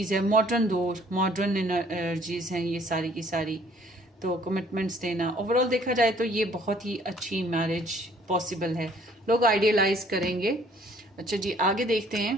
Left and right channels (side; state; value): both; normal; correlation 0.59